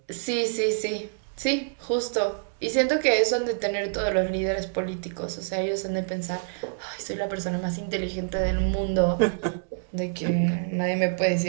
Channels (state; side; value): silent; left; digital silence